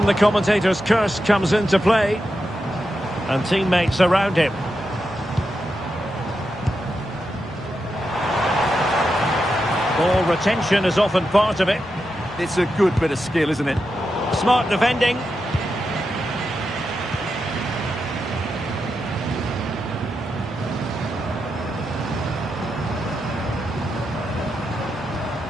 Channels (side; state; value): both; normal; correlation 0.87